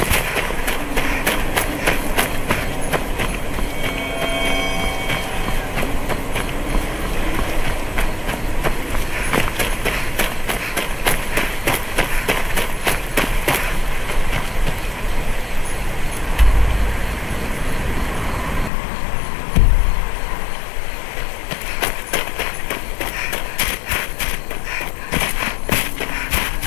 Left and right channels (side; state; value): right; drops out; at 18.7 s